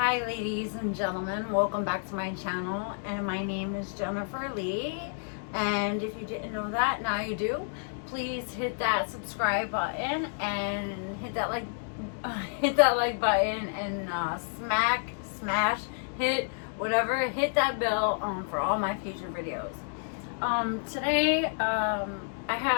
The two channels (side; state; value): right; silent; digital silence